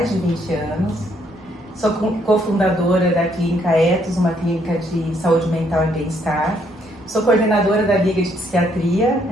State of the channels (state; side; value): normal; both; correlation 0.70